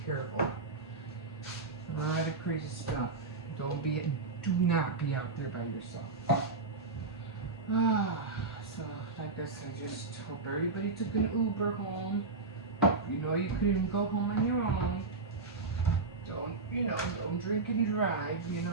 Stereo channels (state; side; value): quieter; left; 3.7 dB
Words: careful. A lot of crazy stuff. Do not be out there by yourself. So I guess I just hope everybody took an Uber home. You know you couldn't go home on your own. Don't drink and drive.